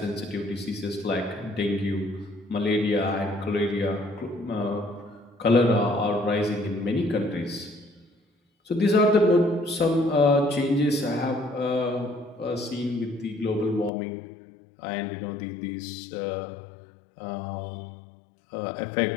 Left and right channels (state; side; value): drops out; right; at 13.9 s